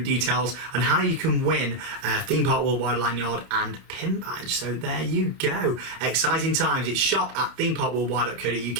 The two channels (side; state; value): left; late; 30 ms